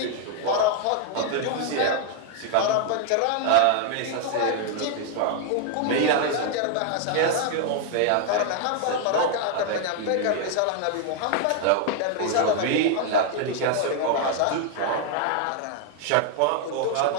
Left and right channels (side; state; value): both; different; correlation 0.00